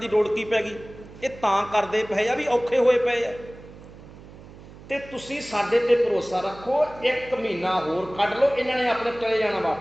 ਲੋੜ ਕੀ ਪੈ ਗਈ? ਇਹ ਤਾਂ ਕਰਦੇ ਪਏ ਆ ਵੀ ਔਖੇ ਹੋਏ ਪਏ ਆ, ਤੇ ਤੁਸੀਂ ਸਾਡੇ ਤੇ ਭਰੋਸਾ ਰੱਖੋ, 1 ਮਹੀਨਾ ਹੋਰ ਕੱਢ ਲਓ, ਇਹਨਾਂ ਨੇ ਆਪਣੇ ਚਲੇ ਜਾਣਾ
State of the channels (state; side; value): noise; right; hum, 18 dB below the sound